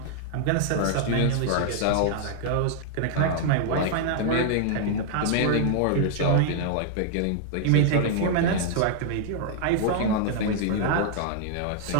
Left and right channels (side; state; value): both; different; correlation -0.01